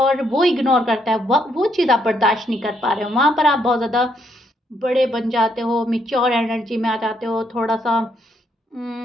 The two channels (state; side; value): normal; both; correlation 0.74